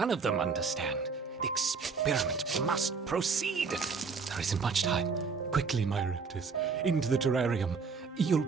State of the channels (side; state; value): left; quieter; 5.1 dB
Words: of them understand. The experiment must proceed. There isn't much time. Quickly, my raptors, into the terrarium. You'll